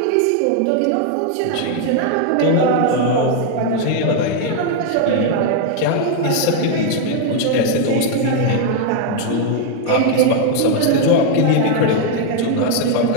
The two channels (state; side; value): different; both; correlation 0.00